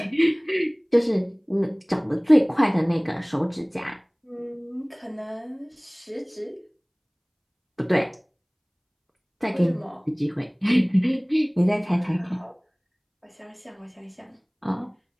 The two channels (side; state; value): both; identical; correlation 1.00